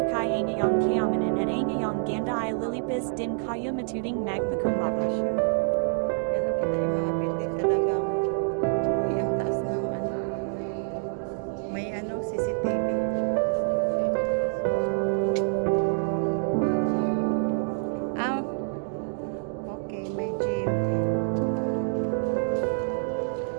ay ngayong kayamanan at ay ngayong ganda ay lilipis din kayo matuding magpakumbaba. Ganun kita yung mga building sa dagang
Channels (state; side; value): silent; left; 60 dB below the other